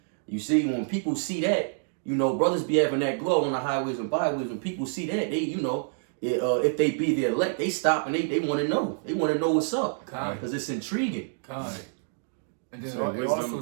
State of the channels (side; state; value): left; silent; digital silence